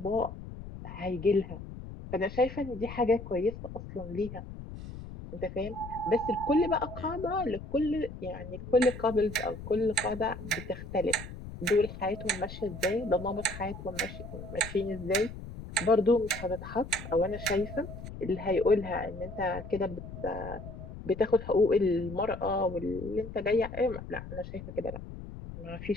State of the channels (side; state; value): left; noise; rumble, 11 dB below the sound